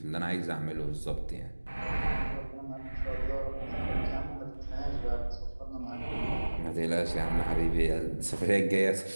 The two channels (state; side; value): inverted; both; correlation -1.00